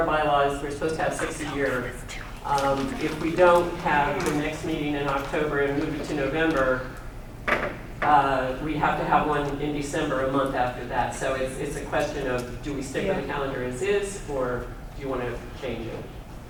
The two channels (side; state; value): both; identical; correlation 1.00